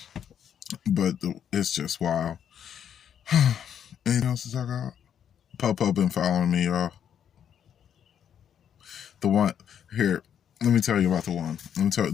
But it's just wild. Anything else to talk about? Popo been following me, y'all. The one here, let me tell you about the one. Let me tell you,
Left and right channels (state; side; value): quieter; right; 8.9 dB